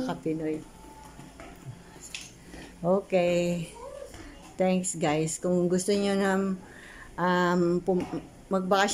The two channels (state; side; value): identical; both; correlation 1.00